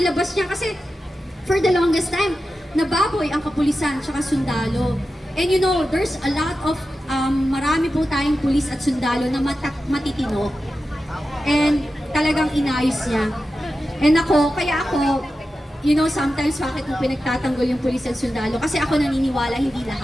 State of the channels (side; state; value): both; normal; correlation 0.92